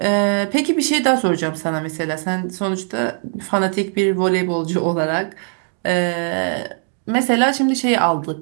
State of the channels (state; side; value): silent; left; 58 dB below the other